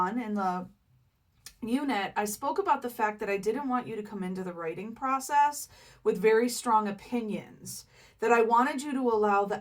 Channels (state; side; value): identical; both; correlation 1.00